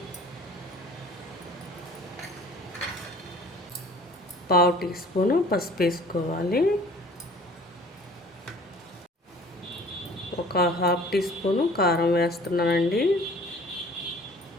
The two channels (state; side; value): normal; both; correlation 0.50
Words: 1/2 టీ స్పూను పసుపు వేసుకోవాలి. ఒక 1/2 టీ స్పూను కారం వేస్తున్నానండి.